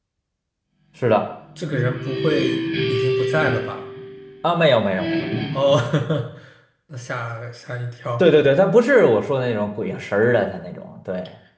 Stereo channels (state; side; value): identical; both; correlation 1.00